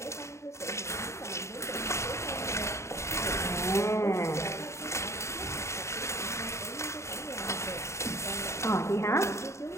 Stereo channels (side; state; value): right; late; 0.14 ms